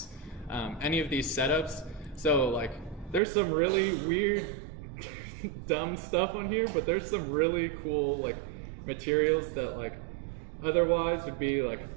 any of these setups. So like there's some really weird dumb stuff on here, but there's some really cool like materials that like otherwise would be like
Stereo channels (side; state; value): left; drops out; at 3.2 s